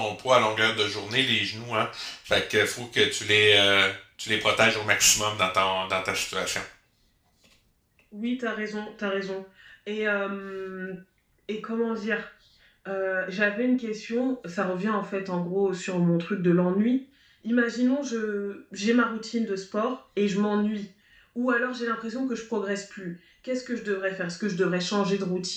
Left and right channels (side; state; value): both; identical; correlation 1.00